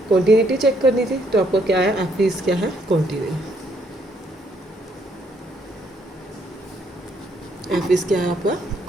कॉन्टिन्यूटी चेक करनी थी, तो आपका क्या आया एफ इज क्या है कॉन्टिन्यू, एफ इज क्या है आपका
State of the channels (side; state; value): both; normal; correlation 0.70